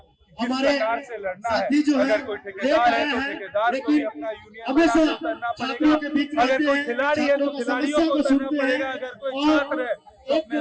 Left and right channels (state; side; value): identical; both; correlation 1.00